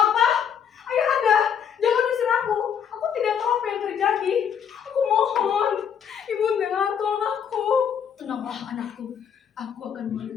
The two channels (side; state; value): right; quieter; 7.9 dB